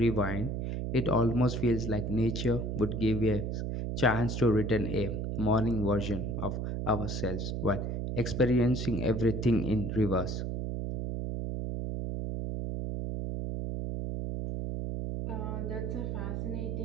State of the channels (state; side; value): noise; right; hum, 2 dB below the sound